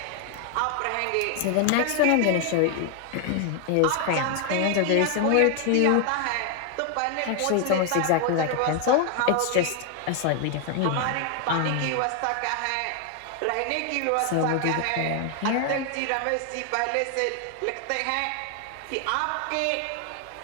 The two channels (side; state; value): both; different; correlation 0.01